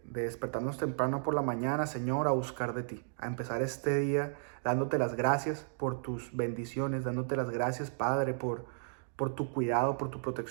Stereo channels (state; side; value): silent; left; digital silence